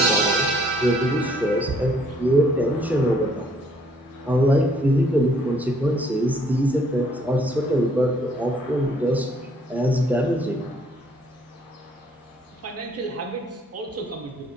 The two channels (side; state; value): both; normal; correlation 0.64